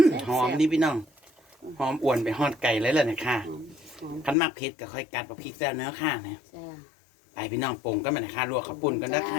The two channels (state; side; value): drops out; right; at 4.4 s